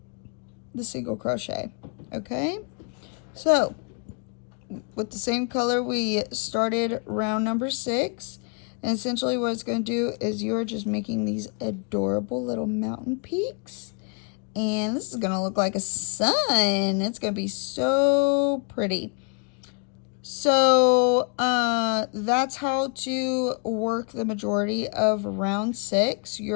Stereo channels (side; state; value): right; quieter; 36.5 dB